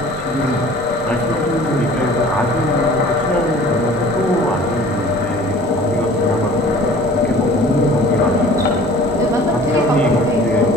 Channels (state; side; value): normal; both; correlation 0.47